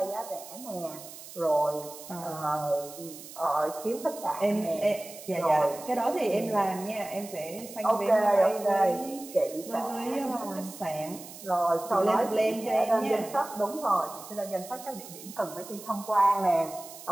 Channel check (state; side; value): noise; right; hiss, 15 dB below the sound